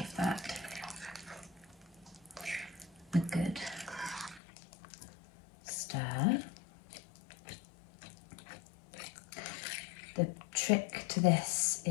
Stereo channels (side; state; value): right; drops out; at 4.4 s